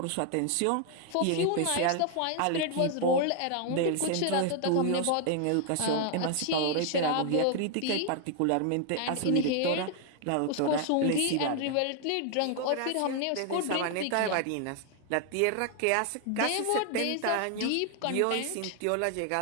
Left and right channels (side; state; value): both; different; correlation 0.00